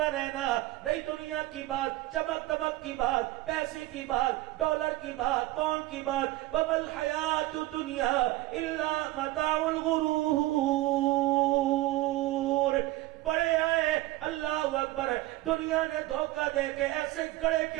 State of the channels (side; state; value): left; quieter; 18.0 dB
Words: رہنا. نہیں دنیا کی بات، چمک دمک کی بات، پیسے کی بات، ڈالر کی بات، پاؤنڈ کی بات. وَمَا الْحَيَاةُ الدُّنْيَا إِلَّا مَتَاعُ الْغُرُورِ. بڑے آئے، اللہ اکبر. دنیا نے دھوکہ دے کے ایسے گڑے کے